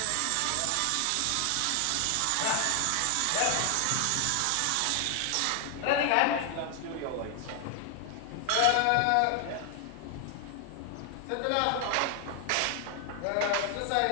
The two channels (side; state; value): both; different; correlation 0.00